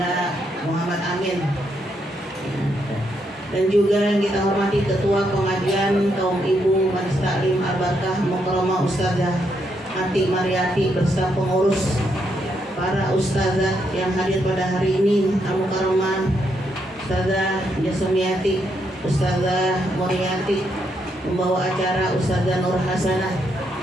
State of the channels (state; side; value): normal; both; correlation 0.78